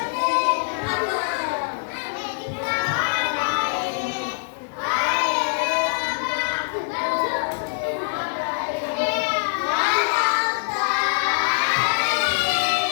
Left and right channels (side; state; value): right; silent; digital silence